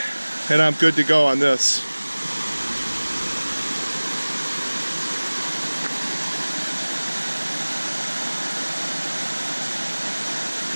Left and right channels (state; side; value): inverted; both; correlation -1.00